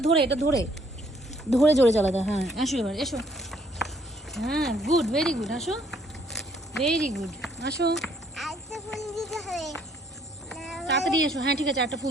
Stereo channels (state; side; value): normal; both; correlation 0.65